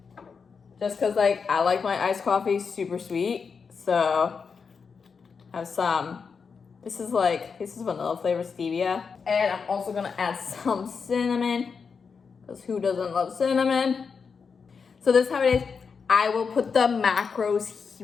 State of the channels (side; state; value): right; quieter; 5.6 dB